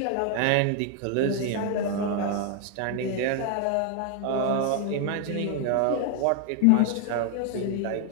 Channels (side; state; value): both; different; correlation 0.00